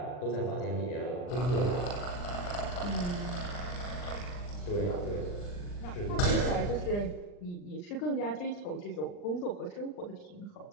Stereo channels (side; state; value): right; late; 39 ms